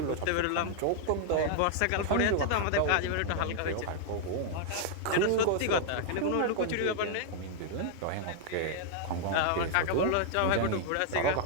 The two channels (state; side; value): different; both; correlation -0.01